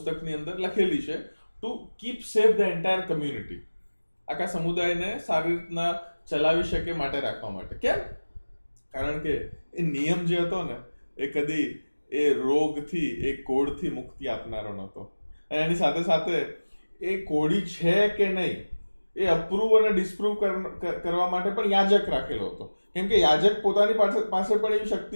અંદર લખેલી છે, to keep safe the entire community. આખા સમુદાયને સારી રીતના ચલાવી શકે માટે રાખવા માટે. કેમ? કારણ કે એ નિયમ જે હતો ને એ કદી એ રોગથી, એ કોઢથી મુક્તિ આપનારો નહોતો. અને એની સાથે સાથે એ કોઢી છે કે નહીં એ અપ્રૂવ અને ડિસ્પ્રૂવ કરવા માટે પણ યાજક રાખેલો હતો. કેમ કે યાજક પોતાની પાસે પણ એવી શક્તિ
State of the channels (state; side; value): inverted; both; correlation -1.00